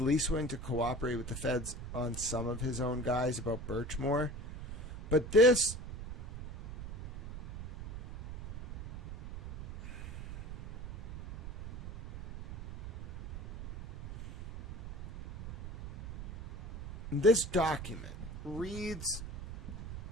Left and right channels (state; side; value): noise; right; rumble, 11 dB below the sound